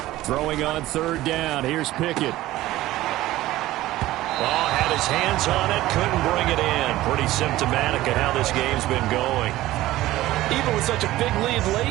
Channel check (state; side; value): quieter; left; 16.2 dB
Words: Throwing on 3rd down. Here's Pickett. Oh, had his hands on it, couldn't bring it in. Pretty symptomatic of how this game's been going. Even with such a big lead